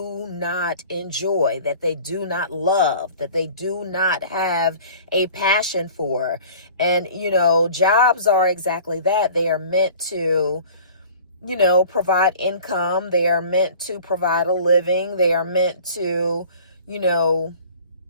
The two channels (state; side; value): inverted; both; correlation -0.46